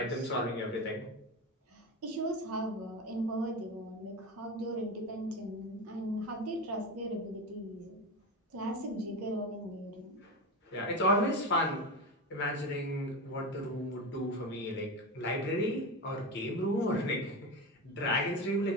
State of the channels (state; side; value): normal; both; correlation 0.21